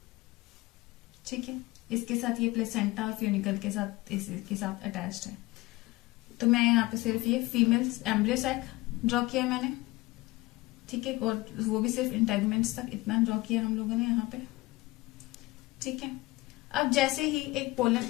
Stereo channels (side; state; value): right; quieter; 20.6 dB